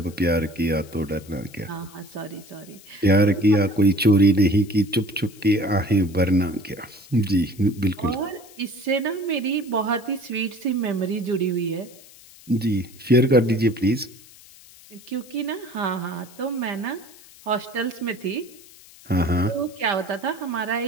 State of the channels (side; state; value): left; noise; hiss, 22 dB below the sound